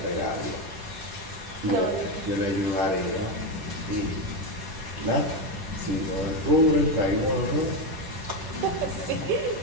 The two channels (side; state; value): left; late; 10 ms